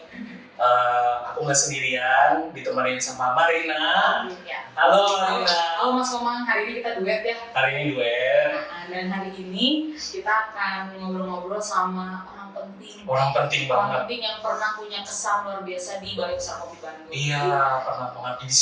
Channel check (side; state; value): both; identical; correlation 1.00